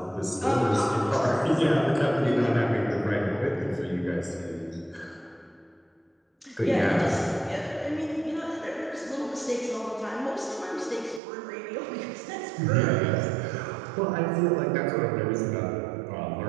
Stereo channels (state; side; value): drops out; left; at 11.2 s